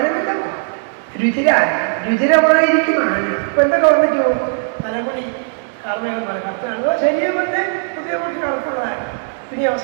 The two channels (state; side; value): silent; left; 64 dB below the other